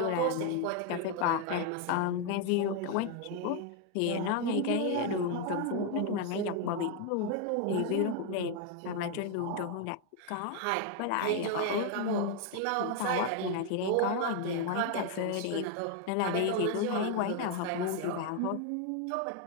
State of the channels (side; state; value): both; different; correlation 0.01